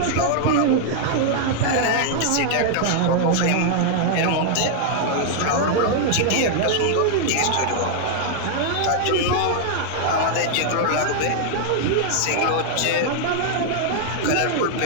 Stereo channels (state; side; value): different; both; correlation -0.01